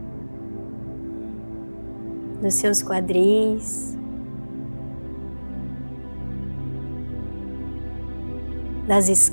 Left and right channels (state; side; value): inverted; both; correlation -1.00